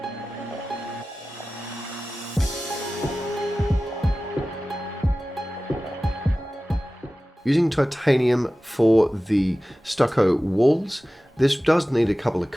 Using titanium for the stucco walls, this does need a couple of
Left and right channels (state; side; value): normal; both; correlation 0.96